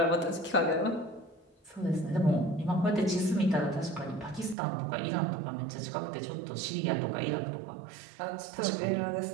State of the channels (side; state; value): left; drops out; at 4.5 s